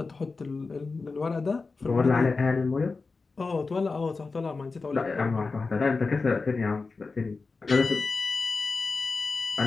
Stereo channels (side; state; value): right; quieter; 4.1 dB